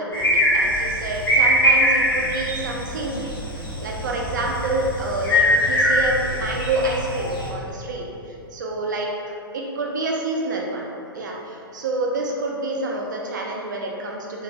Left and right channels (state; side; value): normal; both; correlation 0.15